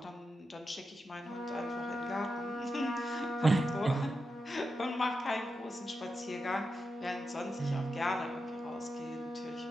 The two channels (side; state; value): both; normal; correlation 0.88